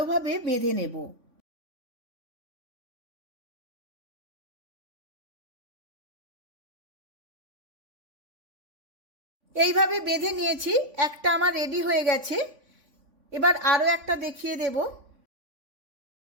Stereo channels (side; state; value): left; late; 3.5 ms